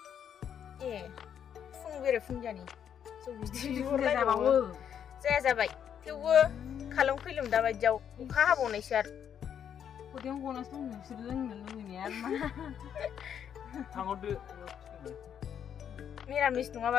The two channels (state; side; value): quieter; right; 8.7 dB